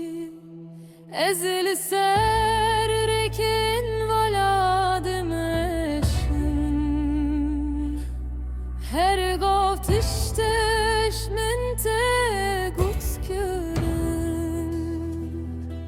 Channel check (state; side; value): identical; both; correlation 1.00